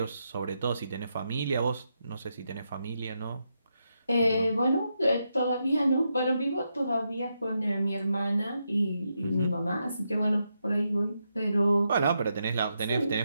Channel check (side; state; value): both; inverted; correlation -0.83